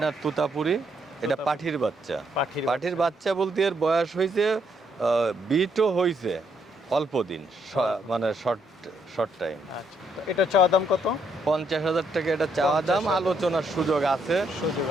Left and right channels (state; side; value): normal; both; correlation 0.74